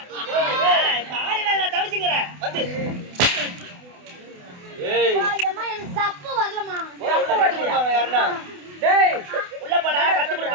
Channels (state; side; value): late; left; 28 ms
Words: தாலில நான் தவிச்சுங்கறேன் வந்து ஏய் அம்மா எனக்கு சப்பு வரலமா உள்ள கட்டு கொடுப்பாங்க யாரனா டேய் உள்ள போடா கட்டு